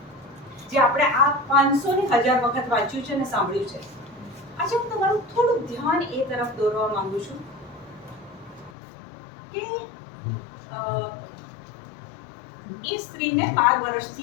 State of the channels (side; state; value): right; drops out; at 8.7 s